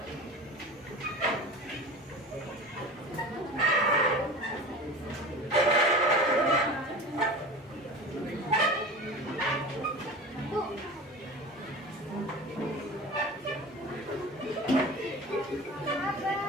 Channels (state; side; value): normal; both; correlation 0.34